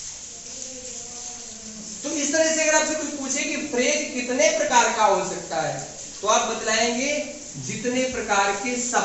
तो इस तरह से अगर आपसे कोई पूछे कि फ्रेज कितने प्रकार का हो सकता है, तो आप बतलाएंगे जितने प्रकार के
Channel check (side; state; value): both; identical; correlation 1.00